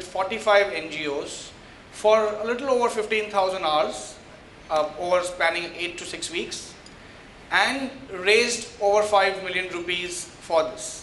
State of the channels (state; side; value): identical; both; correlation 1.00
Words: 45 NGOs for a little over 15,000 hours over spanning 8 to 6 weeks, and raised over 5 million rupees for